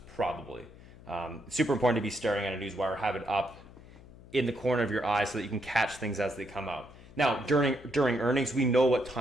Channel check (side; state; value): left; noise; hum, 20 dB below the sound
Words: probably. It's super important to be staring at a Newswire, have it up in the corner of your eye so that you can catch things as they come out. Now, during earnings, we know what